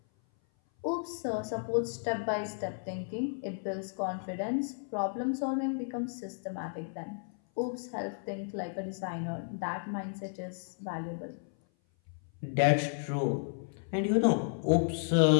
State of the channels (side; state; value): right; silent; 56 dB below the other